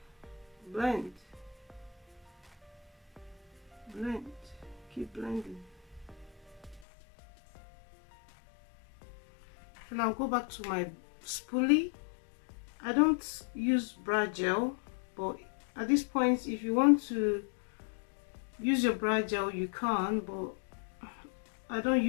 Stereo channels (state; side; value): drops out; right; at 6.9 s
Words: blend. Keep blending. Then I'll go back to my spoolie. I don't use brow gel, but at this point if you want to use your brow gel you can, but I don't